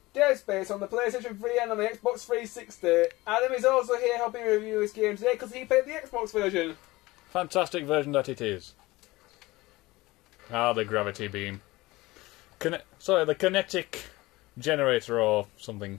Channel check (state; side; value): quieter; right; 20.2 dB